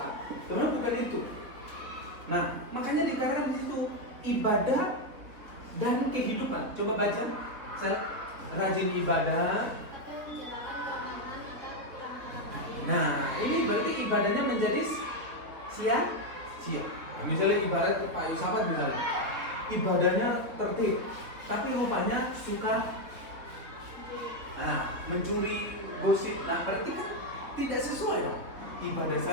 Sebenarnya bukan itu. Nah, makanya dikatakan di situ ibadah dan kehidupan. Coba baca, saya rajin ibadah. Nah, ini berarti ibadahnya menjadi sia-sia. Nah, misalnya ibarat Pak Yusafat misalnya, ibadahnya tertib, tapi rupanya suka mencuri, gosip. Nah, berarti kan tidak sesuai dong. ibadah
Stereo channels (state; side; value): late; left; 3.9 ms